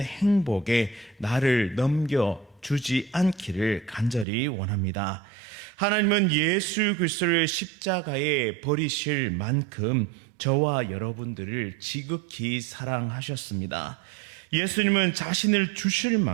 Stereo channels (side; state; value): left; drops out; at 4.2 s